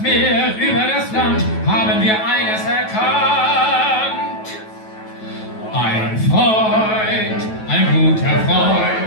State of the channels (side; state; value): right; late; 9.2 ms